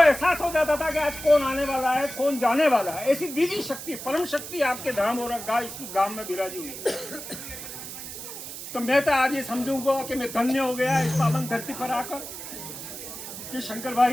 एहसास हो जाता था कि आज कौन आने वाला है, कौन जाने वाला है। ऐसी दिव्य शक्ति, परम शक्ति आपके धाम और इस गांव में विराजी हुई। तो मैं तो आज ये समझूंगा कि मैं धन्य हो गया इस पावन धरती पर आकर कि शंकर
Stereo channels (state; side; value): noise; right; hiss, 10 dB below the sound